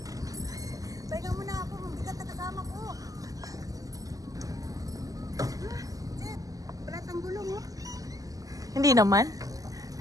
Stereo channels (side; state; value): left; late; 0.17 ms